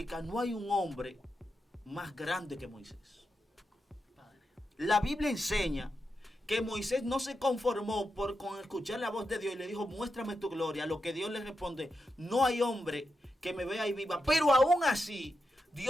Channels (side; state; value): both; normal; correlation 0.87